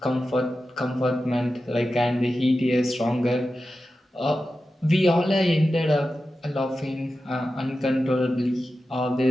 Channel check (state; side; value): normal; both; correlation 0.92